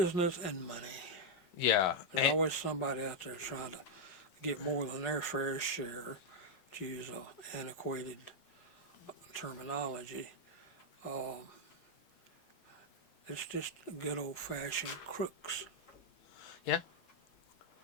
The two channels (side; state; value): right; late; 8.0 ms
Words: and money. Yeah, There's always somebody out there trying to get more than their fair share, to use a antiquated terminology. Um, it's just good old fashioned crooks. yeah,